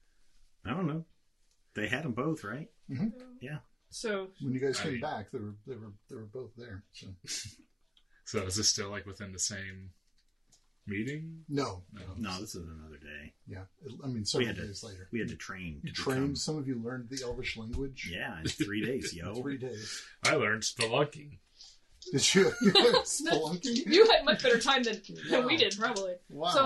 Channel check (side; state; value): both; identical; correlation 1.00